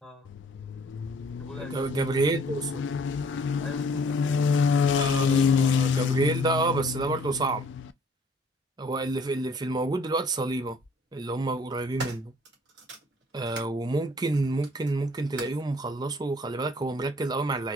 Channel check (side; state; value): both; normal; correlation 0.57